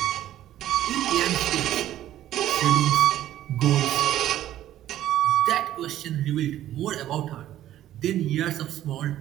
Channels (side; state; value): left; quieter; 12.7 dB